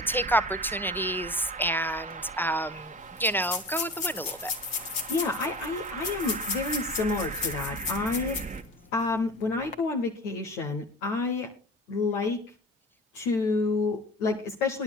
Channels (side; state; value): both; normal; correlation 0.36